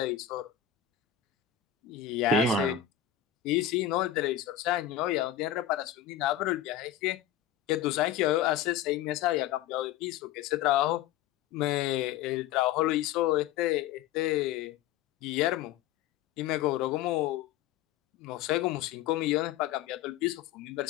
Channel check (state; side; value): quieter; right; 10.9 dB